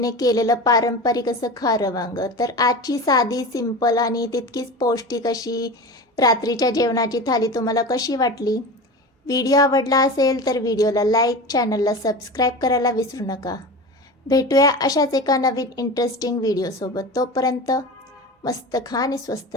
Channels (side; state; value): both; normal; correlation 0.30